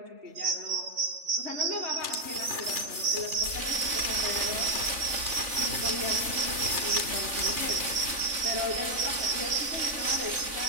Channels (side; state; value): left; late; 3.4 ms